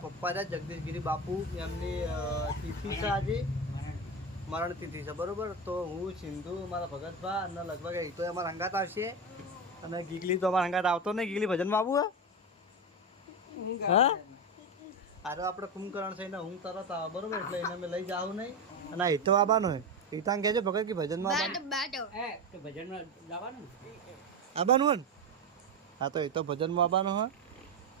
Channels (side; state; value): both; normal; correlation 0.17